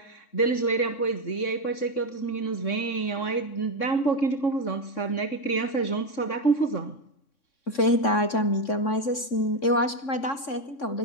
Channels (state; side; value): late; right; 3.6 ms